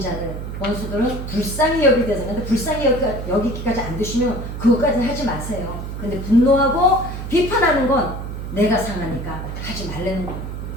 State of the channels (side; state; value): right; noise; hum, 7 dB below the sound